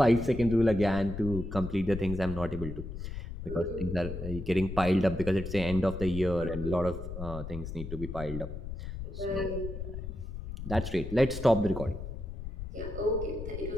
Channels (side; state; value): left; noise; rumble, 7 dB below the sound